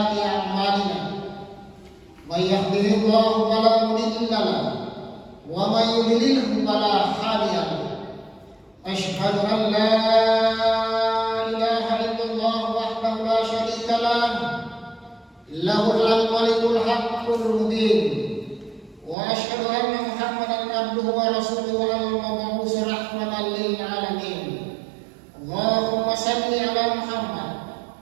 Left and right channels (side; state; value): left; drops out; at 19.2 s